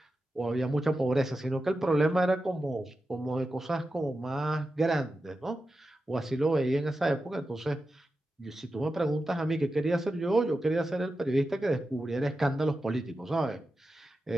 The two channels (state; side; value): normal; both; correlation 0.91